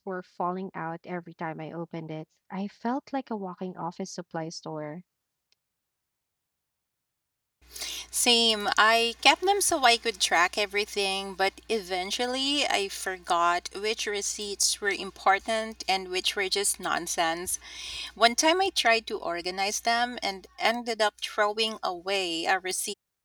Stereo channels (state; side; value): identical; both; correlation 1.00